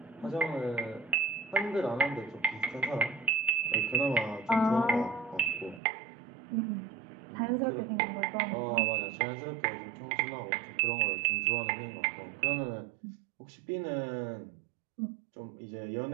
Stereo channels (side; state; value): left; drops out; at 5.8 s